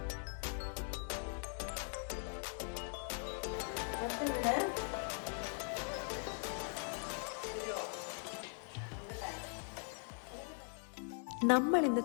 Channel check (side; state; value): right; silent; 50 dB below the other